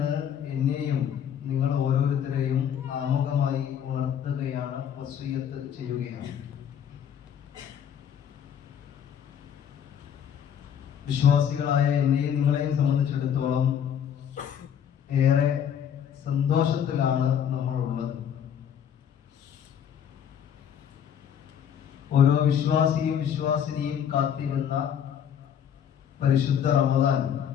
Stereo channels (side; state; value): right; quieter; 8.8 dB